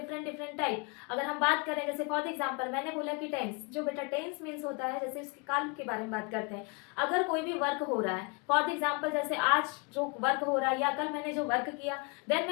डिफरेंट टाइप। अगर हम बात करें, जैसे फॉर एग्जांपल मैंने बोला कि टेंस जो बेटा टेंस मीन्स होता है, जैसे उसके काल के बारे में बात करते हैं। अगर कोई भी वर्क हो रहा है, फॉर एग्जाम्पल जैसे आज जो वर्क हो रहा है या कल मैंने जो वर्क किया, देन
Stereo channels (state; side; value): quieter; right; 31.4 dB